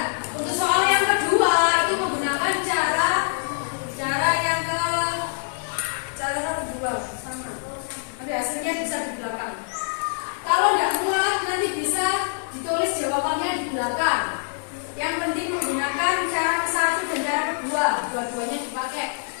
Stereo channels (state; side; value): silent; right; 62 dB below the other